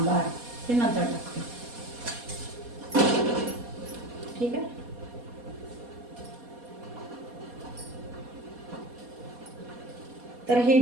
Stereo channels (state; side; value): late; left; 4.2 ms